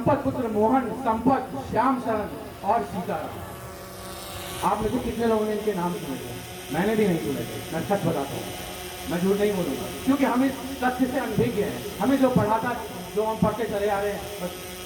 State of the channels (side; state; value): both; identical; correlation 1.00